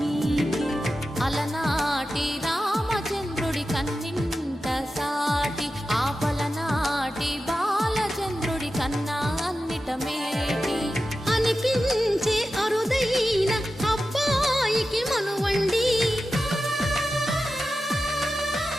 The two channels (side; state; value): both; normal; correlation 0.92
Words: అలనాటి రామచంద్రుడి కన్నింత సాటి ఆపలనాటి బాలచంద్రుడి కన్నా అన్నిట మేటి అనిపించే అరుదైన అబ్బాయికి మనువండి